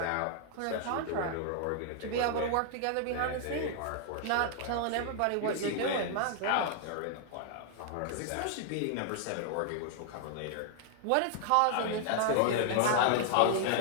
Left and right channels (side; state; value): both; different; correlation 0.00